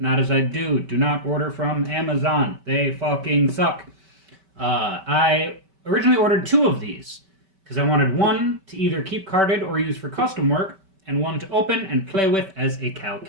as I do. Do not order from Amazon. They fucking suck. I originally ordered 2 of these because I wanted one to either keep carded or use for custom work, and one to open and play with as a Cal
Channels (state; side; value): late; left; 5.2 ms